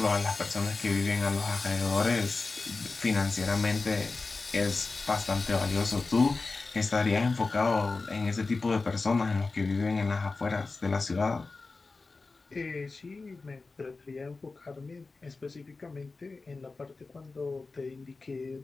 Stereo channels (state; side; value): quieter; right; 3.8 dB